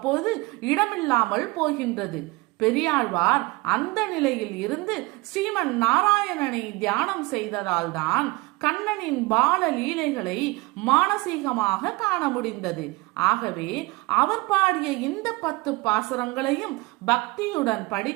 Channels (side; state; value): left; quieter; 23.4 dB